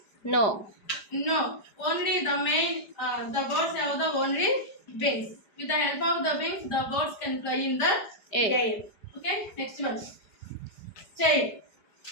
No. No. Only the main, the birds have the only wings. With the help of the wings, the birds can fly in the air. Okay, next one. Tail.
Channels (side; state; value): right; late; 4.9 ms